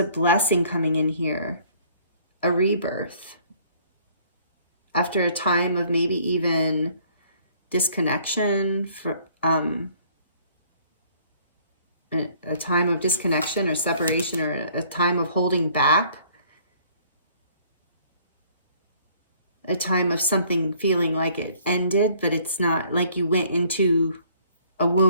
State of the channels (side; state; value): both; inverted; correlation -0.59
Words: blessing coming in here, a rebirth. After a time of maybe even disconnection, for a time of disconnection or separation, or a time of holding back, a time of something feeling like it ended, but it's not, like you went into a